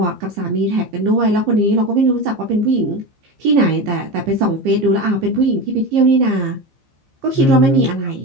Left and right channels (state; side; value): late; left; 15 ms